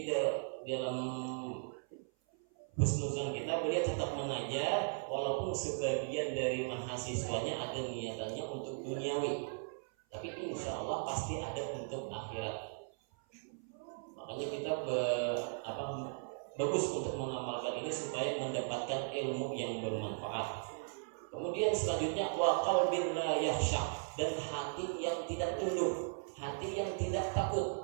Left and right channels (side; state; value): left; silent; 53 dB below the other